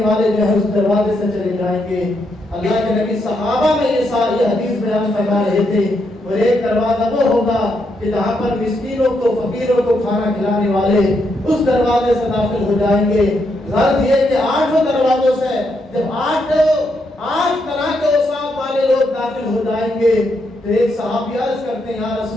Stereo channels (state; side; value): normal; both; correlation 0.79